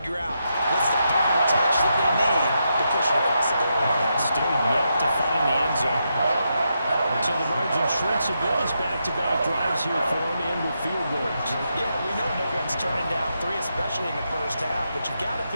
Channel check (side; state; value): both; inverted; correlation -0.83